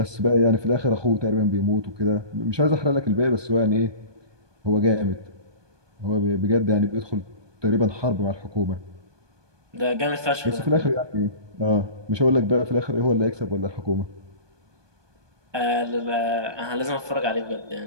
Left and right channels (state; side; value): late; left; 1.2 ms